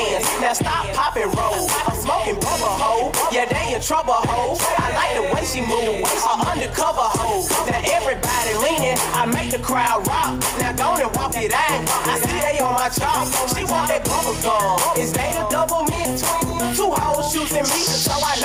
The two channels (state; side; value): identical; both; correlation 1.00